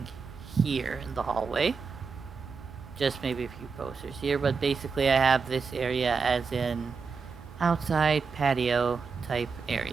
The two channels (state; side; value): quieter; left; 5.2 dB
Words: here in the hallway. Just maybe a few posters here, but basically I have this area as an outside patio type